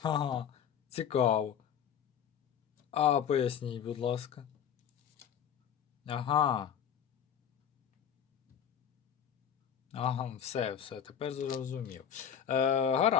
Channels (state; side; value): quieter; right; 8.6 dB